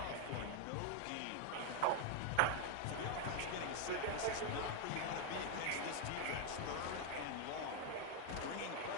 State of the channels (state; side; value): different; both; correlation 0.01